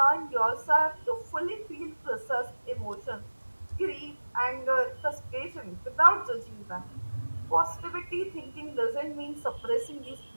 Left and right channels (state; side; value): inverted; both; correlation -1.00